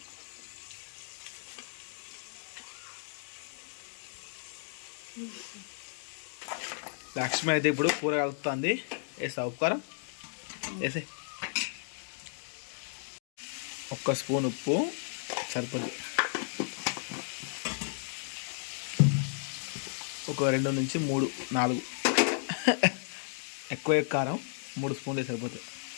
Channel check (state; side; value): silent; right; digital silence